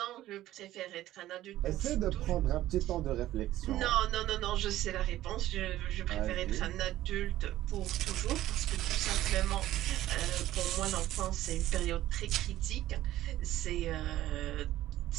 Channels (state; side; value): quieter; left; 14.4 dB